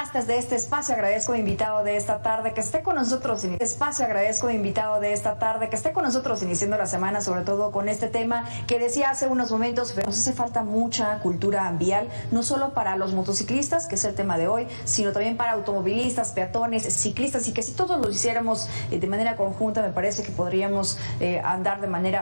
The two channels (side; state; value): both; inverted; correlation -1.00